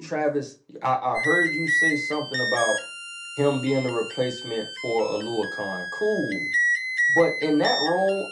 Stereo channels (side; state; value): both; identical; correlation 1.00